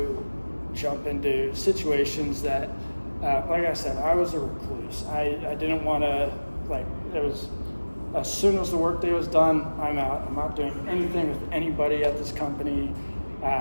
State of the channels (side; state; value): both; inverted; correlation -1.00